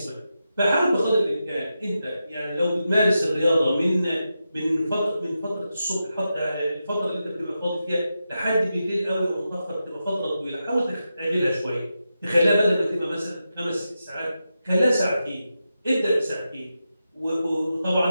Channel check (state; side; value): inverted; both; correlation -0.89